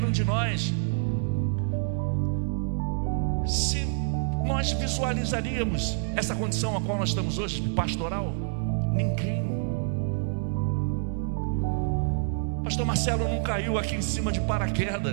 um de nós, se nós visualizaríamos essa condição a qual nós estamos hoje, pastoral, ninguém. Pastor Marcelo não caiu aqui em cima de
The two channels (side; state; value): left; silent; digital silence